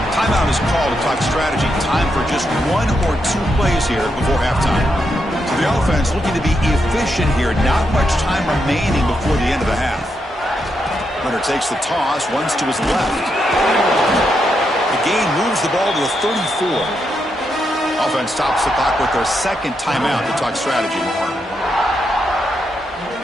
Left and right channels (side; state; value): both; normal; correlation 0.82